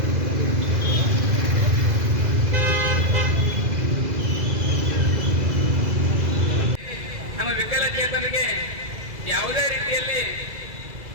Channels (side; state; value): left; late; 2.0 ms